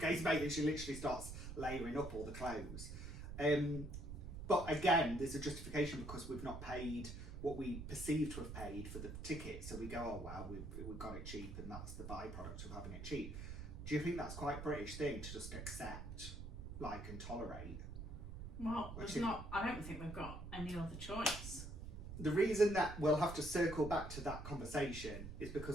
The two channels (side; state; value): right; noise; rumble, 8 dB below the sound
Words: mate, and she literally starts layering up all the clothes. But again, there's a justification because we've not paid what we perceive to have paid for the ticket. So we go, oh well, we got it cheap, and that's the byproduct of having it cheap. Do you think that's quite a British thing to just accept, like, and tolerate? Well, I don't think we've got any other choice. The reason that we'll have to circle back to that conversation is